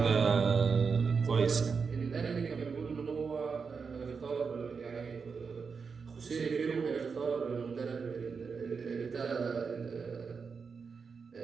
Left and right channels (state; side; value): quieter; left; 5.4 dB